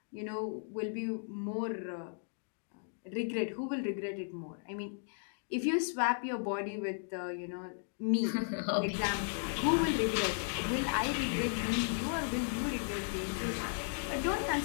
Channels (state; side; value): silent; right; digital silence